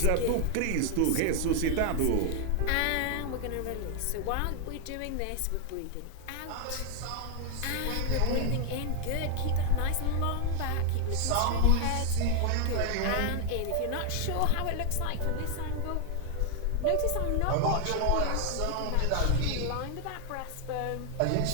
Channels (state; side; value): different; both; correlation 0.00